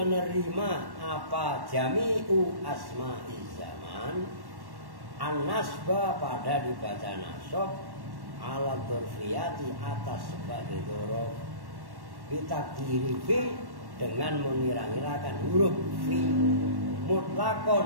apa jami'u asma'iz zaman an-nasba pada dibaca nasab ala dzurfiyati atas sebagai dzuruf bitakdiri fi dengan mengira-ngirakan huruf fi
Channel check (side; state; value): left; late; 1.1 ms